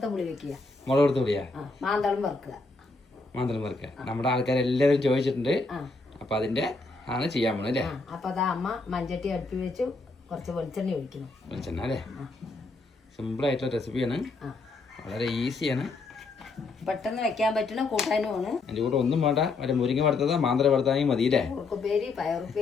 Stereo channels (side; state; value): right; quieter; 3.8 dB